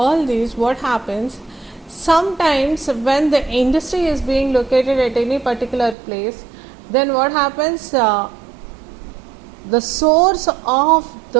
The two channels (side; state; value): left; drops out; at 6.0 s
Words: these, what happens? Sometimes when the industry is being located at any particular place, then what happens, the source of